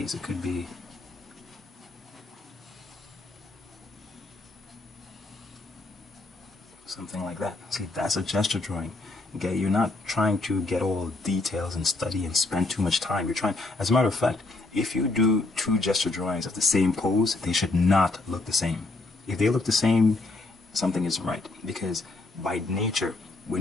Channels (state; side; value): quieter; right; 3.2 dB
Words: it could be something like that. See, that's a gesture drawing. Okay, you're not trying to get all details and study and spend too much time. You're trying, as a matter of fact, if you do two gesture drawings of the same pose, they should not look the same. If they look the same, something isn't right, because by nature,